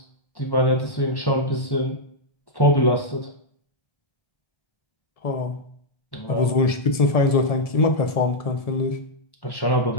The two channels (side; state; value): right; late; 1.7 ms